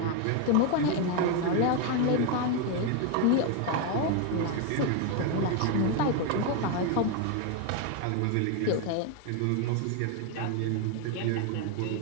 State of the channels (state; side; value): different; both; correlation 0.01